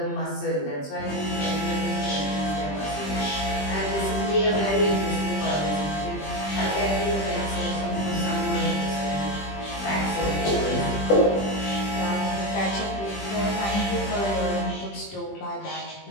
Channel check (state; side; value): late; right; 20 ms